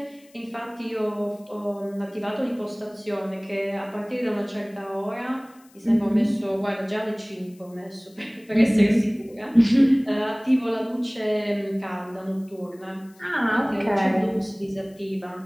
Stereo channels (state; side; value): noise; left; hiss, 29 dB below the sound